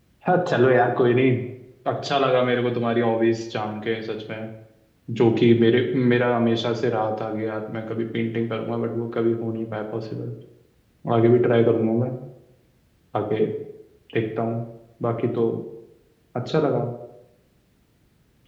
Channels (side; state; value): both; identical; correlation 1.00